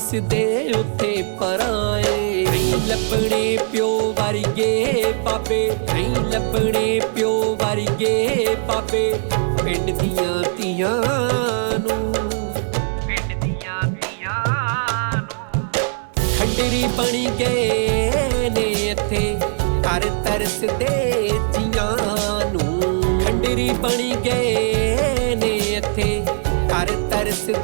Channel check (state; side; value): silent; left; digital silence